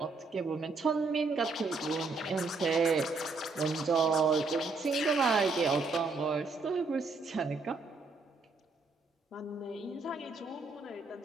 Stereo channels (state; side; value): quieter; left; 3.9 dB